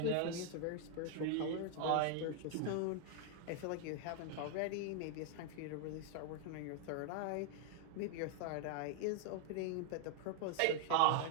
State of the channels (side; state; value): both; different; correlation 0.00